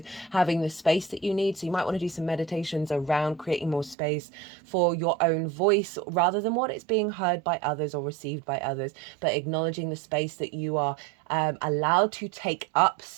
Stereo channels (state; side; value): drops out; left; at 4.0 s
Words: having the space that you need. So you might want to do some meditations around creating more space for your own voice, rather than what it's being heard by others or received by others, but acknowledging the space that you are allowed to take up